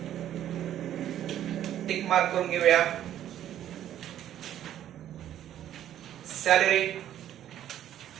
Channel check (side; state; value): left; quieter; 11.4 dB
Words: टिक मार्क करून घेऊया। सॅलरी,